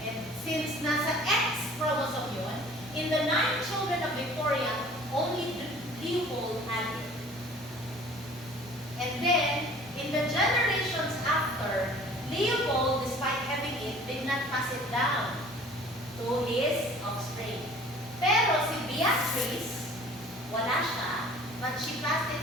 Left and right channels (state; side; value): normal; both; correlation 0.49